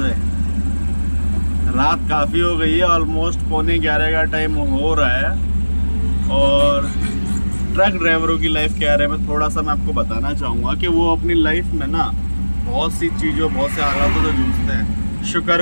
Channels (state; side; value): inverted; both; correlation -1.00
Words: रात काफ़ी हो गई है, ऑलमोस्ट 11:15 का टाइम हो रहा है। और ट्रक ड्राइवरों की लाइफ क्या है, मैं थोड़ा सा मैं आपको बताना चाहूँगा कि वो अपनी लाइफ में ना बहुत सी चीज़ों, बहुत से हालातों से जूझते हैं।